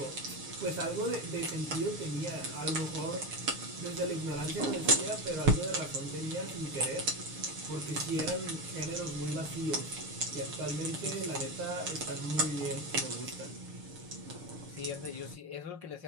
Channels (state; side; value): late; left; 6.6 ms